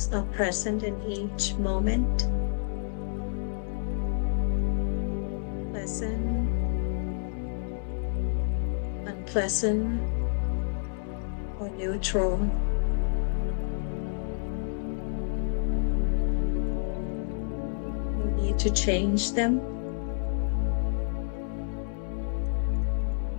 are present in each moment. Pleasant, unpleasant, or neutral. No need to change them.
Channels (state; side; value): silent; right; 59 dB below the other